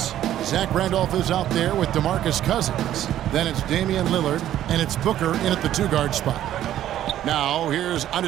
Zach Randolph is out there with DeMarcus Cousins. Then it's Damian Lillard, and it's Booker in at the 2-guard spot. Now, here's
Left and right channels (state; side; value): quieter; left; 12.1 dB